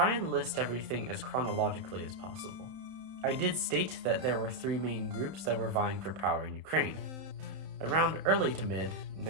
and list everything as chronologically as possible. I did state that there were 3 main groups that were vying for power in Ukraine. Around early to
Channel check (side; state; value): left; late; 31 ms